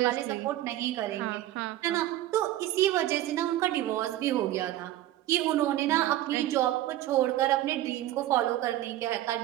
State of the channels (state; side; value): quieter; left; 14.2 dB